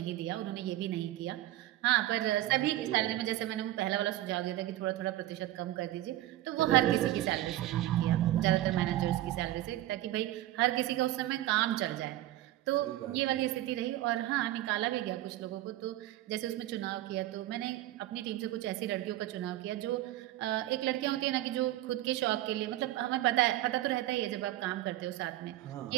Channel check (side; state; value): left; quieter; 15.0 dB